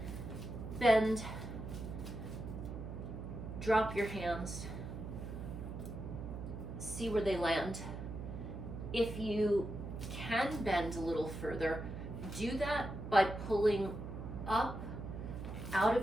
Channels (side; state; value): right; noise; hum, 7 dB below the sound